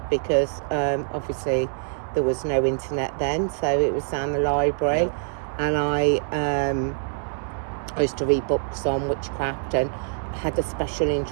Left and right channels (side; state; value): left; silent; 60 dB below the other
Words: because obviously there was no internet then, so it was down the library, and I used to read books on witchcraft, and I had a special